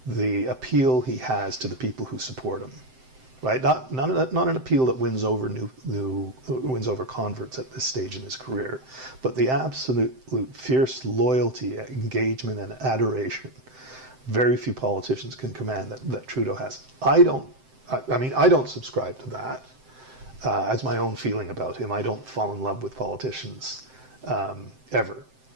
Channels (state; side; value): late; left; 7.7 ms